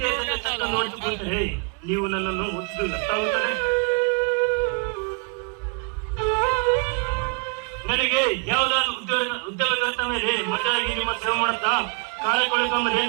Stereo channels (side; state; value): left; quieter; 36.7 dB